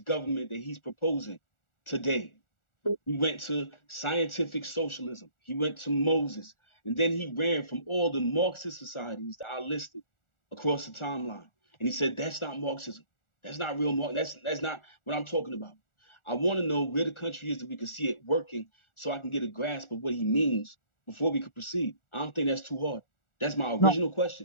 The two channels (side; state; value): right; late; 1.4 ms